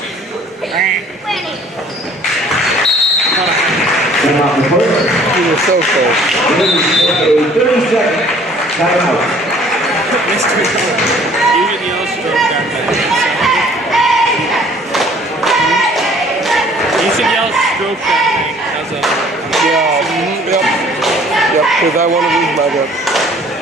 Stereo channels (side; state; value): both; normal; correlation 0.55